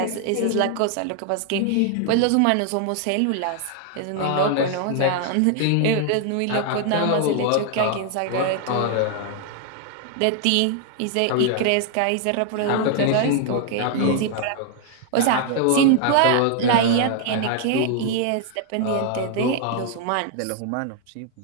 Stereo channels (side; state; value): both; different; correlation 0.00